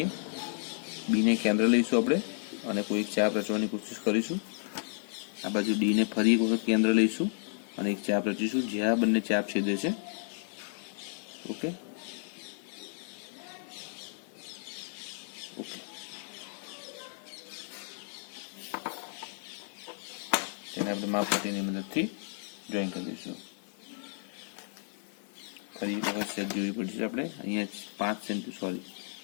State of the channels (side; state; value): right; silent; 56 dB below the other